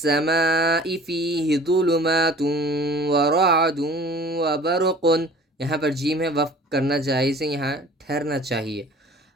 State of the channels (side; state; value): both; normal; correlation 0.47